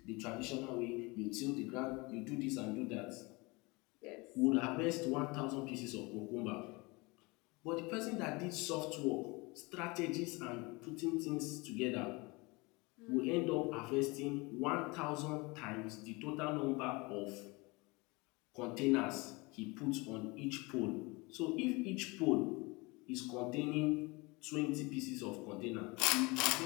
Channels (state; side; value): quieter; right; 25.7 dB